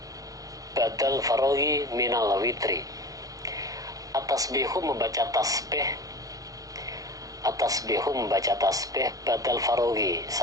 badal faraghi minal witri. At-tasbihu membaca tasbih badal faraghi,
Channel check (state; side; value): late; left; 0.17 ms